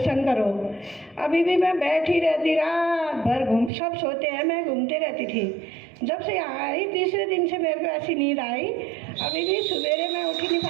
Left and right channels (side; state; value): left; drops out; at 3.7 s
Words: करो। अभी भी मैं बैठी रहती, रात भर सब सोते हैं, मैं घूमते रहती थी। जब से यहाँ आई 3रे दिन से मेरे को ऐसी नींद आई, अभी भी सवेरे मैं उठ ही नहीं